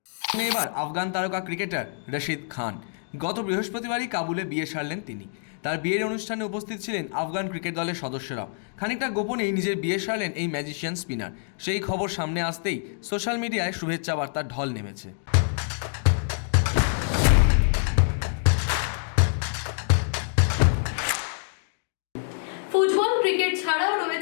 এবার আফগান তারকা ক্রিকেটার রশিদ খান। গত বৃহস্পতিবারই কাবুলে বিয়ে সারলেন তিনি। তার বিয়ের অনুষ্ঠানে উপস্থিত ছিলেন আফগান ক্রিকেট দলের সদস্যরাও। খানিকটা গোপনেই নিজের বিয়ে সারলেন এই ম্যাজিশিয়ান স্পিনার। সেই খবর সামনে আসতেই সোশ্যাল মিডিয়ায় শুভেচ্ছা বার্তার ঢল নেমেছে। ফুটবল ক্রিকেট ছাড়াও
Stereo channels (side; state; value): right; silent; digital silence